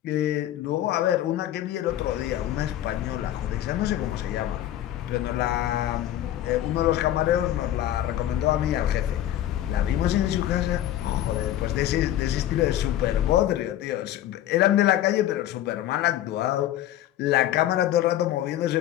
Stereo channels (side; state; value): right; quieter; 12.7 dB